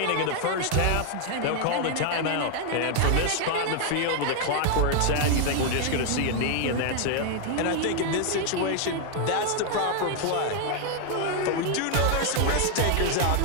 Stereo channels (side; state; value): both; different; correlation 0.00